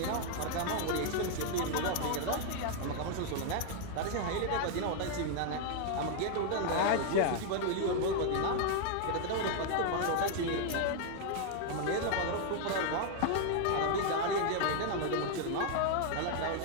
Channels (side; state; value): both; different; correlation 0.00